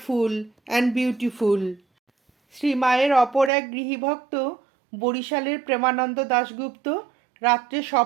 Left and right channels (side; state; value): left; drops out; at 3.5 s